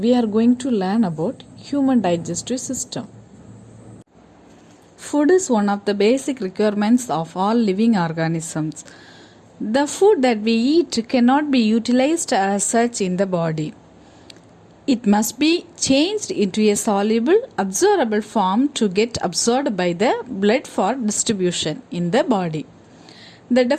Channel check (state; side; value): identical; both; correlation 1.00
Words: are going to learn about human digestive system. Food is one of the basic requirements of all living organisms. The food that we eat cannot be utilized as such in the body. It must be changed into a soluble, absorbable form to get absorbed by the blood for distribution in the body. The